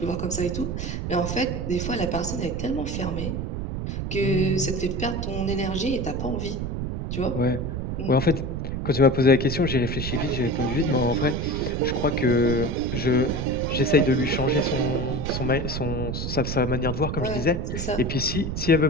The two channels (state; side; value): noise; right; rumble, 3 dB below the sound